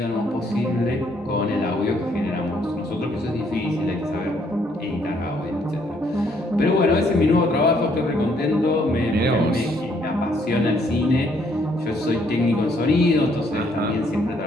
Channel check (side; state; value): both; normal; correlation 0.68